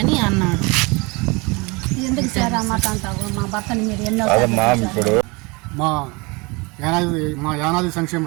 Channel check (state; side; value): quieter; left; 27.0 dB